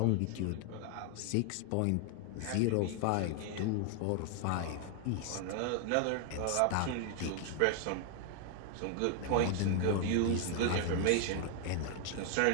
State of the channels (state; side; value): different; both; correlation 0.00